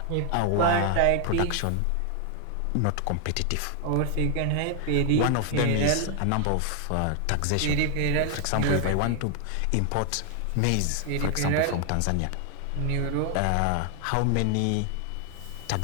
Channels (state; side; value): different; both; correlation 0.00